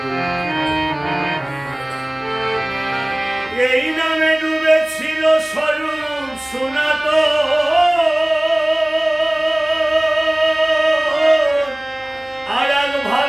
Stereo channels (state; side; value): noise; left; hum, 28 dB below the sound